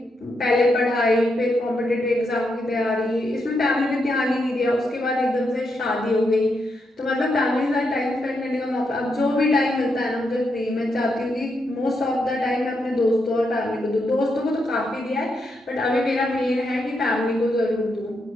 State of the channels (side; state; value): both; normal; correlation 0.82